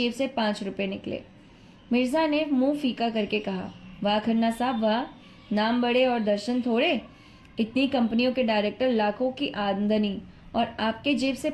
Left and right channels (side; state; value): both; identical; correlation 1.00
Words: से 5 रुपए निकले। मिर्जा ने मुंह फीका करके कहा, वाह खन्ना साहब वाह, नाम बड़े और दर्शन थोड़े। इतनी कंपनियों के डायरेक्टर, लाखों की आमदनी, और आपके जेब से